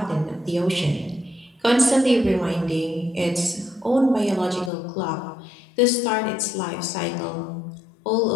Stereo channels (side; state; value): right; drops out; at 4.7 s